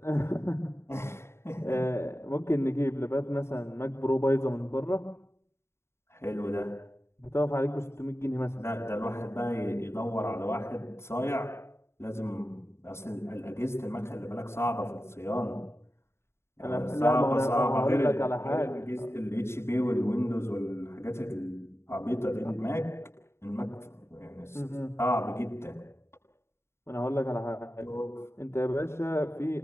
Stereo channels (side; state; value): right; late; 0.12 ms